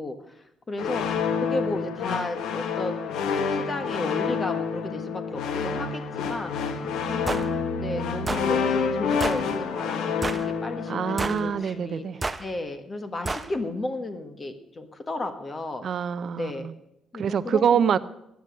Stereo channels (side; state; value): both; normal; correlation 0.65